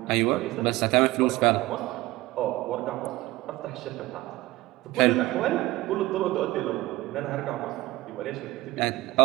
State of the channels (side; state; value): left; quieter; 18.7 dB